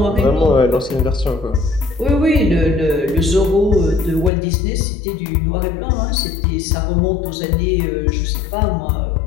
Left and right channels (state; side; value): drops out; right; at 4.3 s